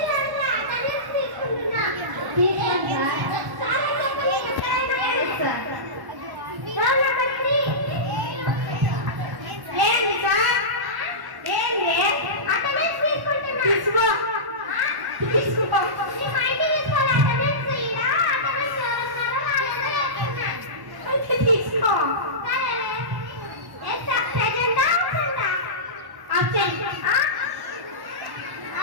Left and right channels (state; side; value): late; left; 1.1 ms